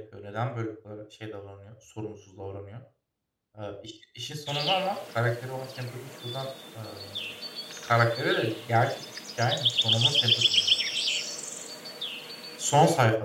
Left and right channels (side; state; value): both; identical; correlation 1.00